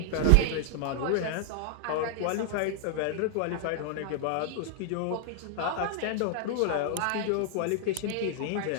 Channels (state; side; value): different; both; correlation 0.00